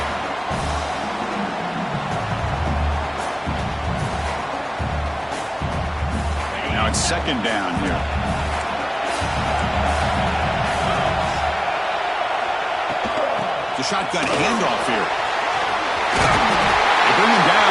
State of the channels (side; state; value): both; identical; correlation 1.00